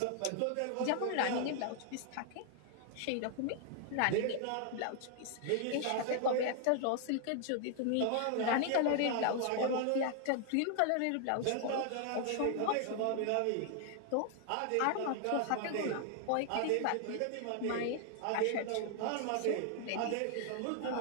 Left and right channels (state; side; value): different; both; correlation 0.00